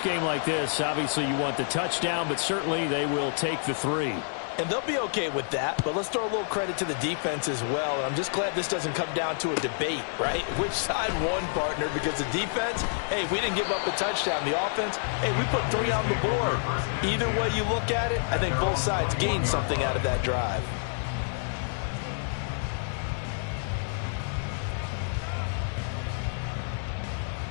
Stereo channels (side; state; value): right; silent; digital silence